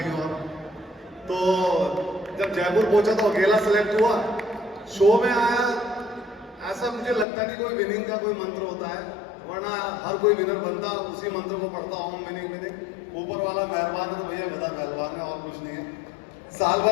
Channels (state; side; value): drops out; right; at 7.2 s